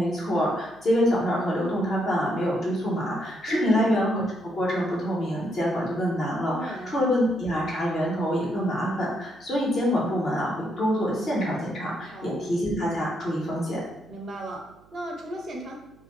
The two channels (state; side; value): noise; right; hum, 28 dB below the sound